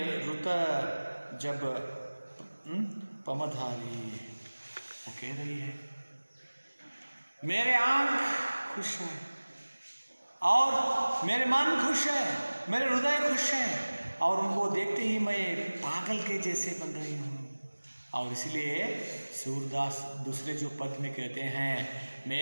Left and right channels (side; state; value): both; inverted; correlation -1.00